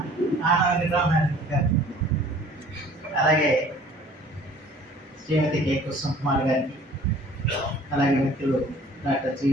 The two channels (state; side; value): normal; both; correlation 0.52